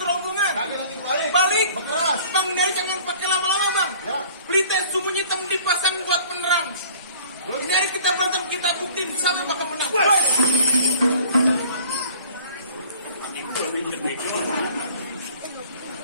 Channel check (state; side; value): inverted; both; correlation -0.50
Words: rombongan. Tapi nanti balik. Balik. Berkeras. Bang, dia jangan pakai lama-lama, Bang. Ya. Pelita sembunyi hitam dipasang buat penerang. Ini hari kita berantem, kita buktiin siapa bakal menang.